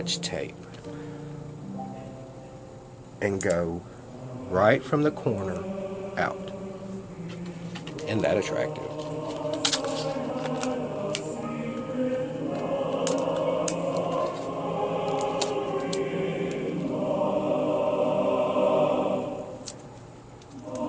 tape and go right from the corner out. Isn't that attractive?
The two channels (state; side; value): identical; both; correlation 1.00